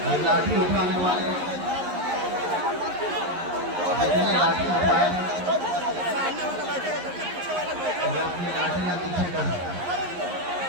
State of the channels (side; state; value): left; late; 11 ms